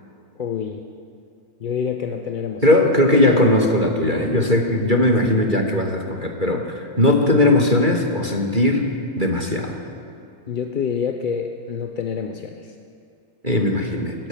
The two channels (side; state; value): left; late; 2.3 ms